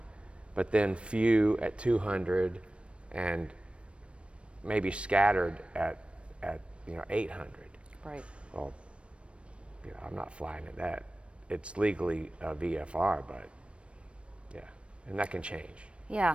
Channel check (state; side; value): late; left; 0.060 ms